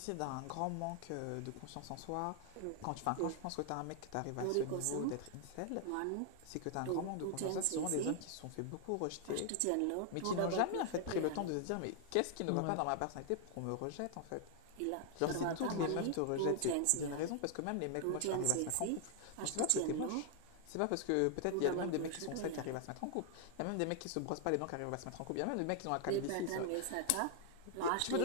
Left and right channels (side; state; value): both; different; correlation 0.00